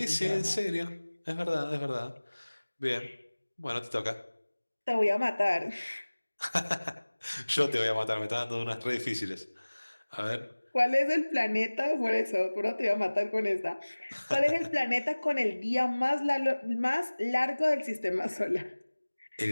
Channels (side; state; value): both; inverted; correlation -1.00